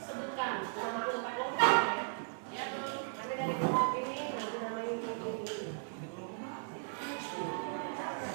nama kelompok ya. Nanti dari kelompok ini, nanti nama ini.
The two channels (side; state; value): left; silent; digital silence